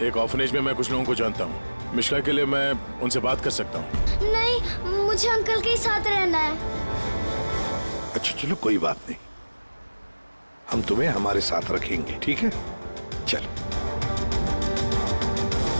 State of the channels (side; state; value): both; inverted; correlation -1.00